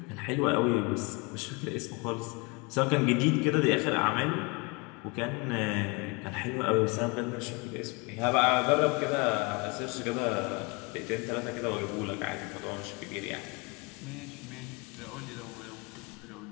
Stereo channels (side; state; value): right; quieter; 29.0 dB